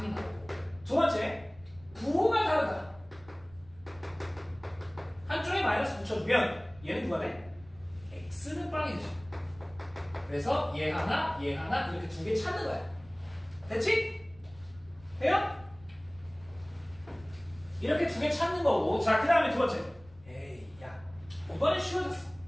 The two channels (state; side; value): noise; right; rumble, 23 dB below the sound